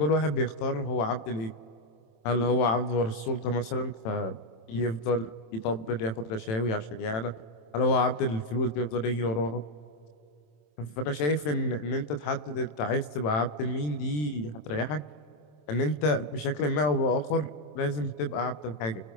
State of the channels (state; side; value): late; right; 27 ms